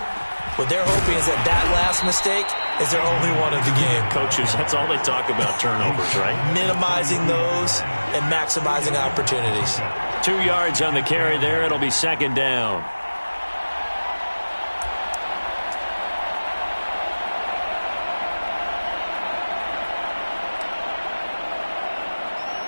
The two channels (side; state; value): both; inverted; correlation -1.00